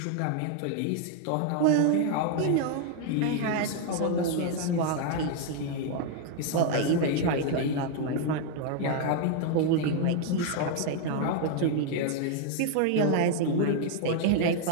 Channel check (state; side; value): different; both; correlation 0.00